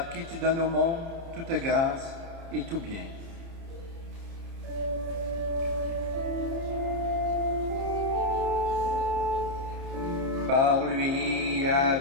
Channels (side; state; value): left; late; 30 ms